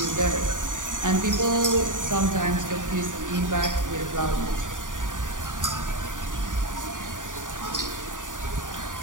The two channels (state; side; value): late; left; 0.88 ms